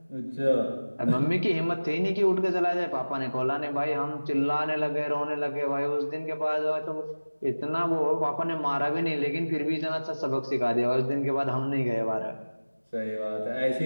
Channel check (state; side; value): inverted; both; correlation -1.00